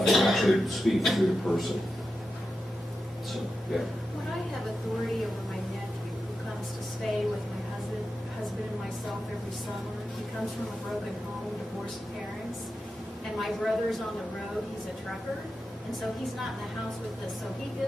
and actually speak through the person. So, yeah. When I have authority over my nephew who comes to stay with my husband and myself every summer, he comes from a broken home, divorced parents, and my brother's on the road, he's a trucker, and so he's not in the house with us, so he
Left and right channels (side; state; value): both; normal; correlation 0.90